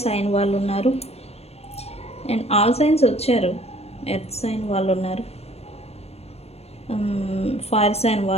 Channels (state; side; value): late; right; 0.30 ms